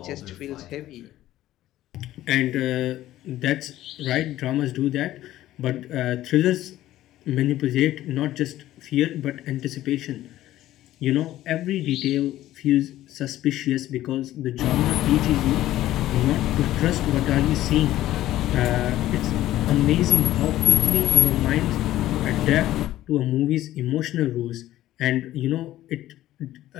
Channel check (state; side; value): quieter; right; 14.4 dB